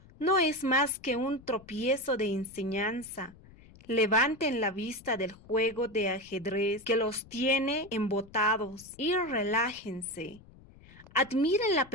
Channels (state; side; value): noise; left; rumble, 23 dB below the sound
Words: No es más que un tropiezo de enseñanza. Levanten la vista del juego de ajedrez que los tiene embotados y relájense. Admiren la